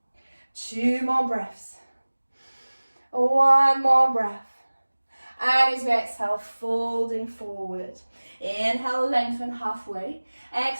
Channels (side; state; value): both; inverted; correlation -1.00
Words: Two more breaths. One more breath. And as you exhale, folding forward. Inhale, lengthen halfway.